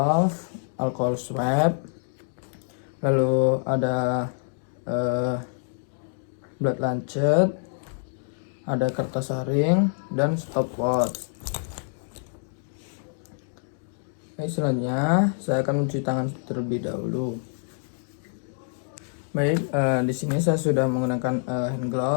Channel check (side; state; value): right; silent; digital silence